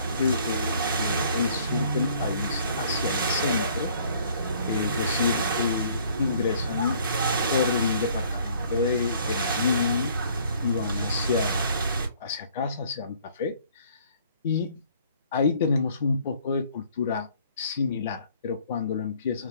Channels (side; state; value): both; inverted; correlation -0.58